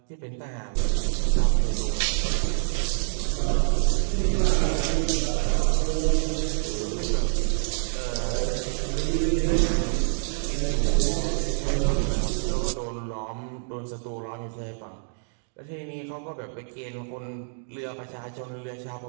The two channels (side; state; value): left; silent; 61 dB below the other